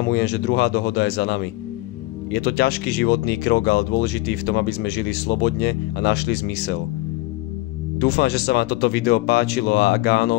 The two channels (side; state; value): right; quieter; 19.3 dB